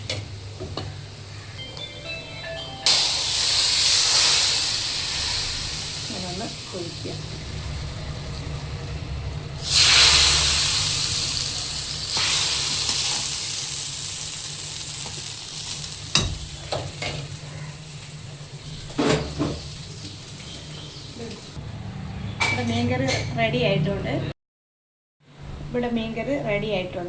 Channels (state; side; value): identical; both; correlation 1.00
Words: ഇങ്ങനെ ഒന്ന് ഒഴിക്കുക. മീൻകറി റെഡി ആയിട്ടുണ്ട്. ഇവിടെ മീൻകറി റെഡി